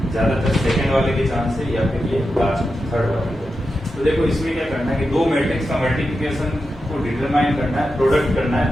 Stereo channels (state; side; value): normal; both; correlation 0.89